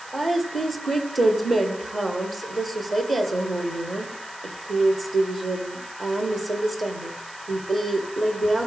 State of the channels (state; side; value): noise; right; hiss, 19 dB below the sound